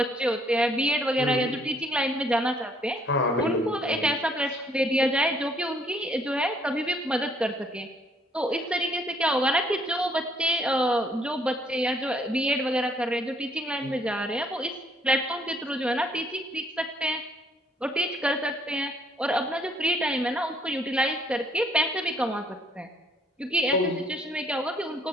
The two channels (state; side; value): normal; both; correlation 0.65